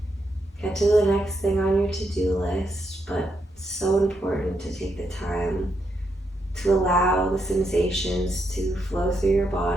get to the next thing on your to-do list, but so important to take the time to allow the sensations to flow through your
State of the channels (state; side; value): normal; both; correlation 0.80